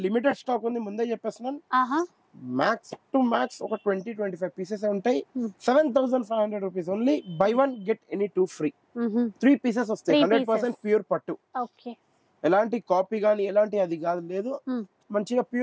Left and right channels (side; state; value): both; identical; correlation 1.00